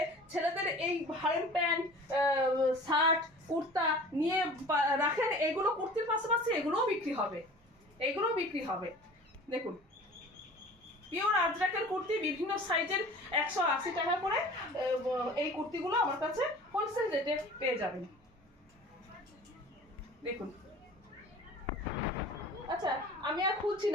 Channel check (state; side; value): normal; both; correlation 0.42